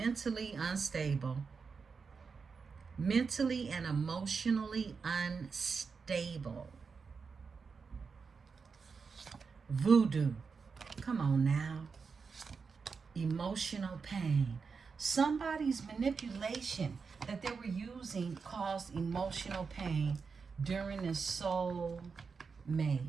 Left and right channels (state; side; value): quieter; left; 5.2 dB